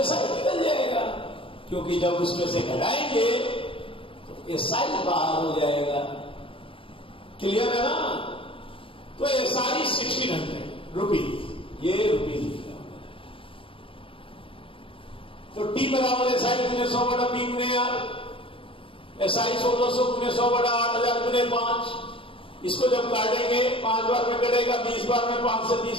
SI निकल जाएगा, क्योंकि जब उसमें से घटाएंगे SI बाहर हो जाएगा। क्लियर है ना? तो SI 1600 रुपीज, ये रुपीज लिखा हुआ है। तो T बराबर SI गुने 100 बटा P गुने R, SI 1600 गुने 100 बटा 8000 गुने 5। इसको जब काटेंगे 5 बार में कटेगा, 20 बार में 5 से 20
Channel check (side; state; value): right; late; 0.26 ms